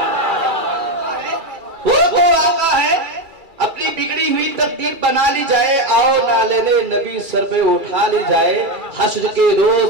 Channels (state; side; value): late; left; 2.3 ms